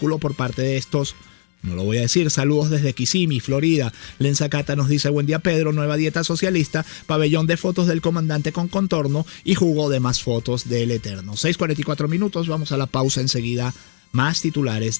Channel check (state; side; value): silent; right; 66 dB below the other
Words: por parte de estos. No lo voy a decir. Saludos desde Kissimmee, Florida. Lenza Cata nos dice, buen día Pedro, nueva dieta socialista, pabellón de fotos del comandante con contorno y jugo de más fotos del Eterno. 6:44 minutos, vamos a la pausa enseguida. Más titulares